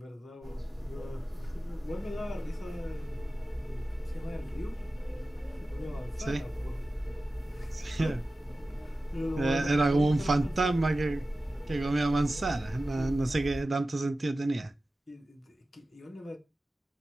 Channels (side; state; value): both; normal; correlation 0.95